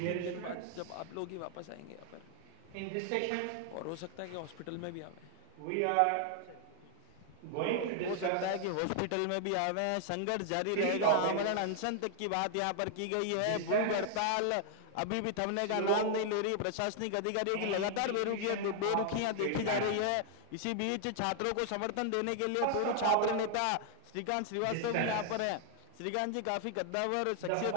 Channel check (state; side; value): different; both; correlation 0.00